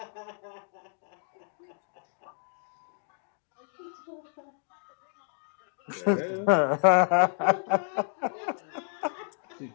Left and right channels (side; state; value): right; silent; 57 dB below the other